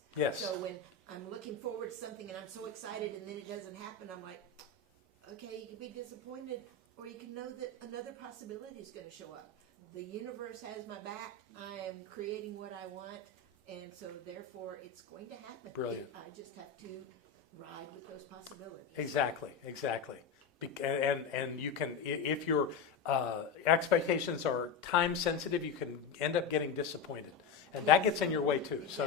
Yes. So when I'm looking forward to something and I'm so excited and then it doesn't happen, I'm like, okay, you can be disappointed, or you can know that another possibility is going to show up. The universe has my back. I am creating what I want, and so therefore it's going to happen. Brilliant. I just have to ride with those possibilities. Exactly. And you can, if your expectations are time sensitive, you can end up getting disappointed, and that gets in your way too.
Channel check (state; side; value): quieter; right; 5.2 dB